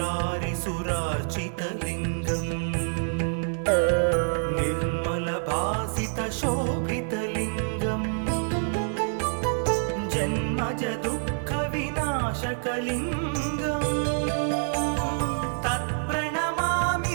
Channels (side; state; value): left; silent; 56 dB below the other